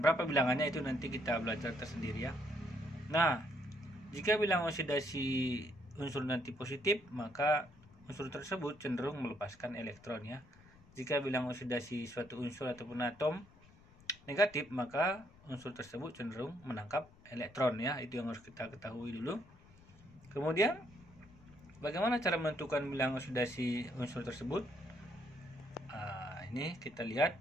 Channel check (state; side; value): noise; left; rumble, 25 dB below the sound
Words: bilangannya itu nanti kita belajar tersendiri ya. Nah, jika bilangan oksidasi unsur nanti positif, maka unsur tersebut cenderung melepaskan elektron ya. Jika bilangan oksidasi suatu unsur ataupun atom negatif, maka unsur tersebut cenderung menangkap elektron ya. Itu yang harus kita ketahui dulu. Kemudian, bagaimana cara menentukan bilangan oksidasi unsur tersebut? Ini kita lihat.